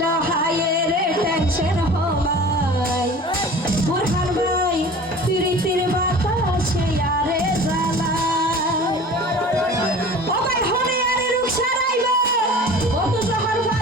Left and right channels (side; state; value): both; normal; correlation 0.41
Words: হায়ের টেনশন হমাই বোরহান ভাই তিরিতির বাতাসে আরে জ্বালায় ও ভাই হনে আরে রুকসা রাইব কত জহর